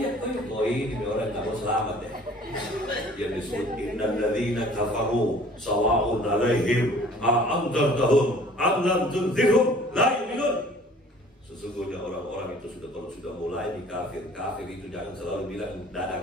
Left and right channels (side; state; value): both; normal; correlation 0.51